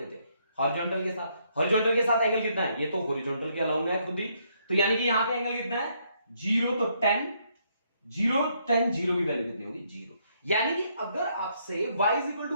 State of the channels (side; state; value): both; inverted; correlation -0.72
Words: थे? हॉरिजॉन्टल के साथ। हॉरिजॉन्टल के साथ एंगल कितना है? ये तो हॉरिजॉन्टल के अलाउंग है खुद ही, तो यानी कि यहां पे एंगल कितना है? 0, तो 10, 0 की वैल्यू कितनी होगी? 0। यानी कि अगर आपसे y is equal